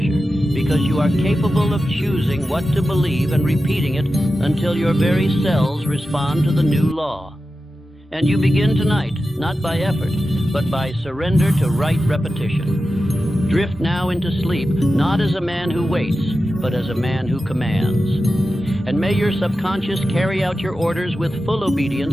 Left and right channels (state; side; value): normal; both; correlation 0.92